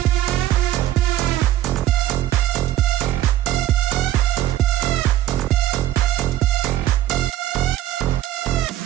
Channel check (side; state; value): left; quieter; 13.5 dB